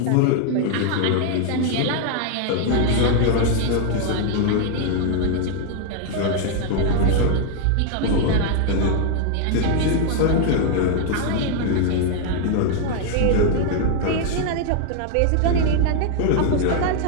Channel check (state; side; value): different; both; correlation 0.00